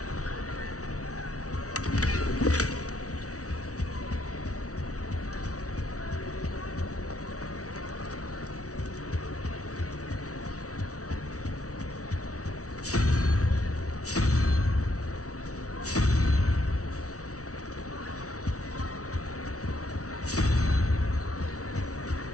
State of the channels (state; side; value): late; right; 0.66 ms